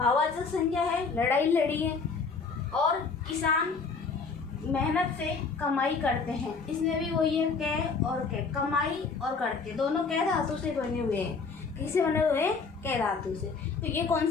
संज्ञा है, लड़ाई लड़ी है। और किसान मेहनत से कमाई करते हैं, इसमें भी वही है, कै और कै, कमाई और करते, दोनों कै धातु से बने हुए हैं। किससे बने हुए हैं? कै धातु से। तो ये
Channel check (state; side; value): quieter; right; 4.8 dB